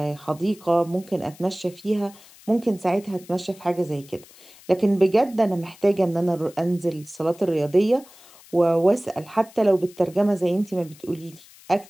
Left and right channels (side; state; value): left; noise; hiss, 23 dB below the sound